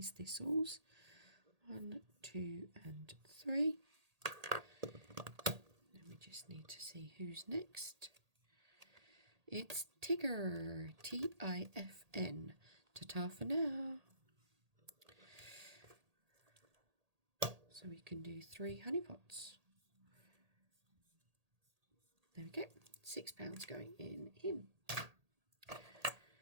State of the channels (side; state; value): left; late; 1.8 ms